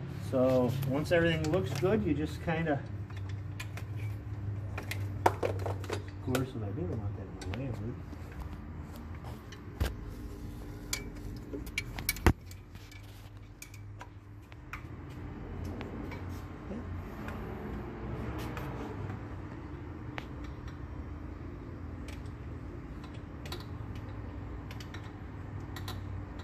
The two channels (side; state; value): both; identical; correlation 1.00